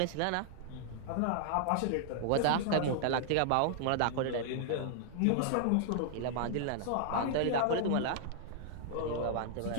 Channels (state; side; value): different; both; correlation -0.01